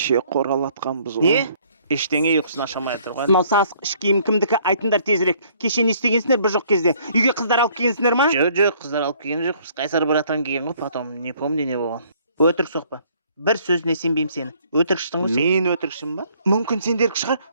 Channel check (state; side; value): inverted; both; correlation -0.61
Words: қоралатқанбыз ғой. Не? Ештеңе ұйқысын ашамай тұрған. Мынау сасық іш киім кімдікі, айтыңдар тезірек. Кеше не істегенсіңдер бір жоқ кезде? Үйге қыздар алып келгенсіңдер ма? Жоқ, қыздар алып келген жоқ. Біз Қайсар братан келген ғой, потом не помню не болған. Өтірік соқпа. Бір сөзіне сенбеймін сені. Өтірікшісің ғой сен. Мен өтірікшім ба? Мүмкін сендерік шығар,